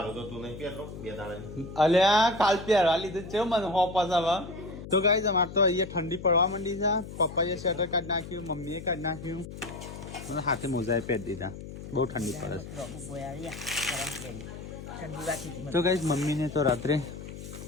અલ્યા કાલ પહેરવા લીધું છે મને હોપસ હવે. તો ગાઈસ અમારે તો અહીંયા ઠંડી પડવા માંડી છે. પપ્પાએ સ્વેટર કાઢી નાખ્યું, મમ્મીએ કાઢી નાખ્યું, મને હાથે મોજાએ પહેરી દીધા. બહુ ઠંડી પડે છે. તો ગાઈસ મમ્મીને તો રાત્રે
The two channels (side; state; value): left; noise; hum, 11 dB below the sound